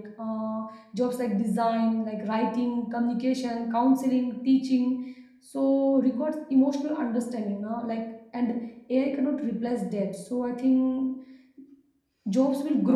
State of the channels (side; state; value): both; identical; correlation 1.00